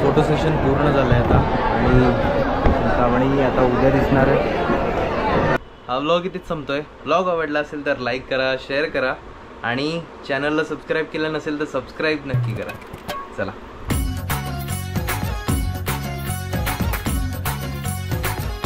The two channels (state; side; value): identical; both; correlation 1.00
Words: सेशन पूर्ण झालं आहे आता आणि चिंतामणी आता उद्या दिसणार आहे. हा व्लॉग इथेच संपतोय. व्लॉग आवडला असेल तर लाईक करा, शेअर करा आणि चॅनलला सबस्क्राईब केलं नसेल तर सबस्क्राईब नक्की करा. चला.